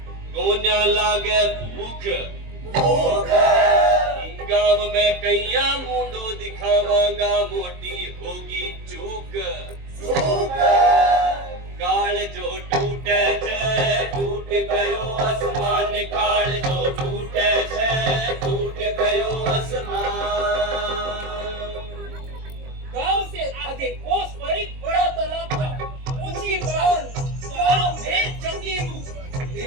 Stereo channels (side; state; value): left; late; 22 ms